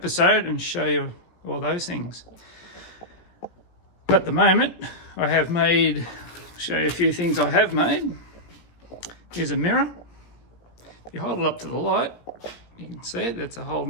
and show you all those things. But at the moment I have made, show you a few things I have made. Here's a mirror. If you hold it up to the light, you can see it, that's a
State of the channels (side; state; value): right; late; 17 ms